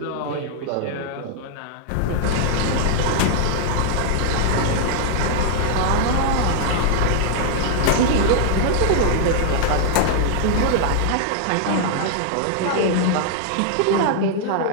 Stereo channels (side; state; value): both; different; correlation 0.00